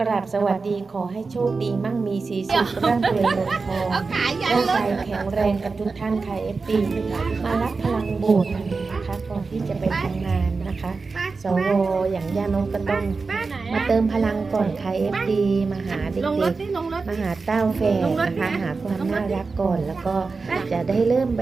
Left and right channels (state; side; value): quieter; left; 4.3 dB